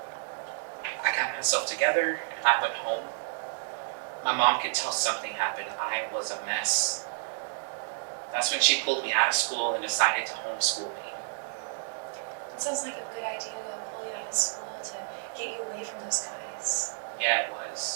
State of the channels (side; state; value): left; silent; digital silence